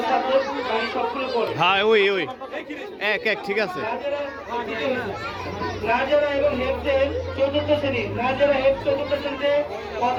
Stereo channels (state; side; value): identical; both; correlation 1.00